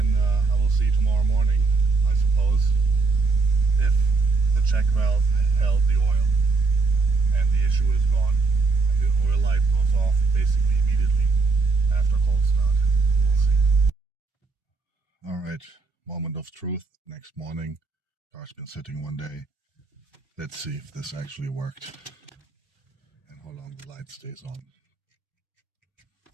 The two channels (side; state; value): left; quieter; 4.1 dB